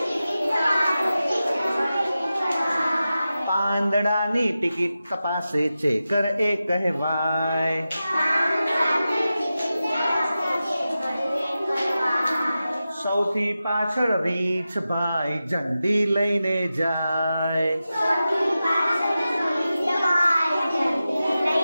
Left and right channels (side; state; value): both; inverted; correlation -0.92